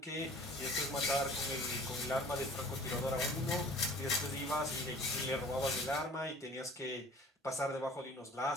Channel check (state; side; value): normal; both; correlation 0.48